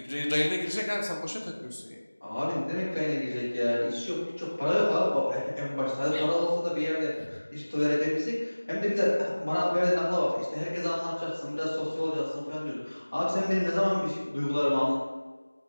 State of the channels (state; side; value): inverted; both; correlation -1.00